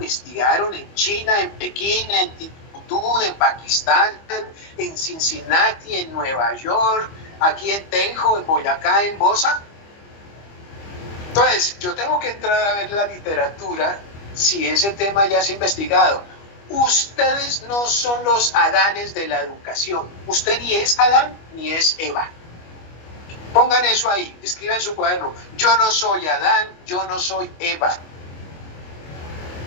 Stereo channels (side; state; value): right; late; 25 ms